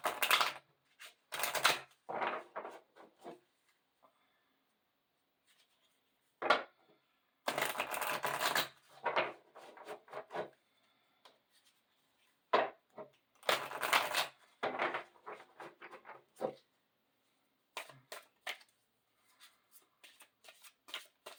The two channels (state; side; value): identical; both; correlation 1.00